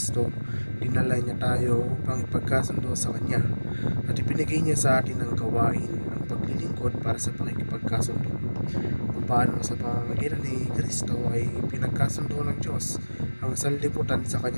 dinala niya tayo upang ipagkasundo sa Kanya at ibinigay niya sa atin ang gawain ng paglilingkod para sa pakikipagkasundo. Paano sa pamamagitan ni Kristo ay pinagkasundo ng Diyos ang sanlibutan sa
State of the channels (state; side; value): inverted; both; correlation -1.00